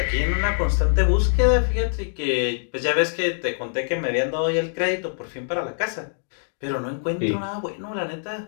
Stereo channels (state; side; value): silent; right; digital silence